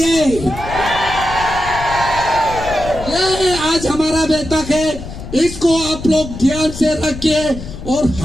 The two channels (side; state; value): left; noise; rumble, 11 dB below the sound